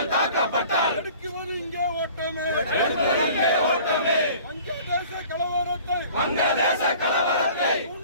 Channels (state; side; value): inverted; both; correlation -0.48